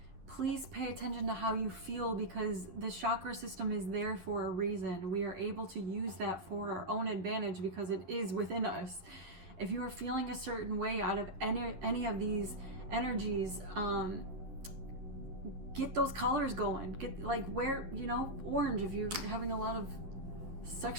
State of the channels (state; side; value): late; left; 11 ms